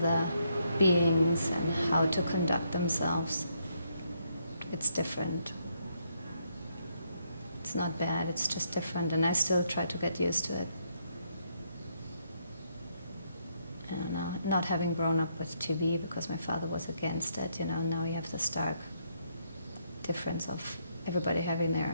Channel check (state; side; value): inverted; both; correlation -0.74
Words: beings and how to conduct themselves. It's different. It's not bad, it's just different, and I still try to get used to it. And not having grown up with TV because my father was against it, now you have the stark difference of everybody having